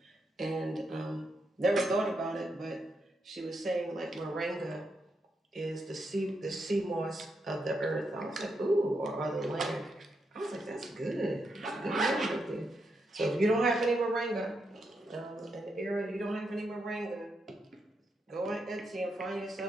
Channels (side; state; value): both; normal; correlation 0.82